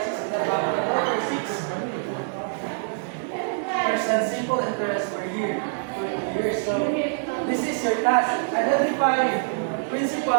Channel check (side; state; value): left; silent; digital silence